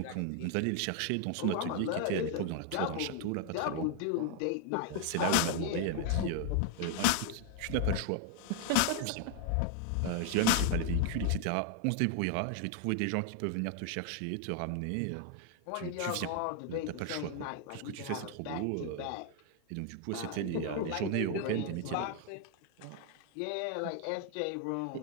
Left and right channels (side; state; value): both; different; correlation 0.00